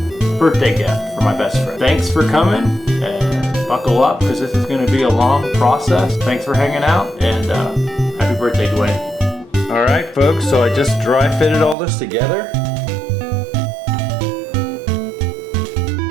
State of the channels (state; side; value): drops out; left; at 11.8 s